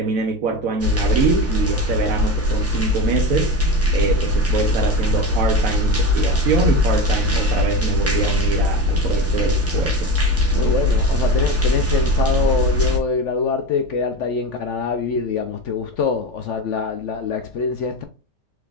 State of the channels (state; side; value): normal; both; correlation 0.24